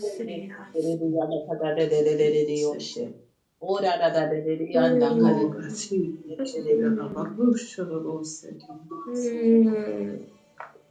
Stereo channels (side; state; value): both; identical; correlation 1.00